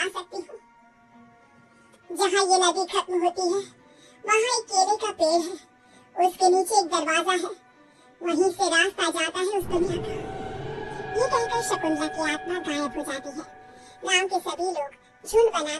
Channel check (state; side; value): identical; both; correlation 1.00